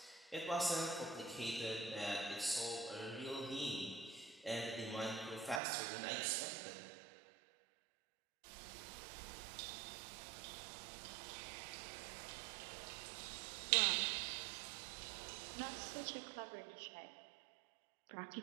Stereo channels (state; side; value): drops out; left; at 5.6 s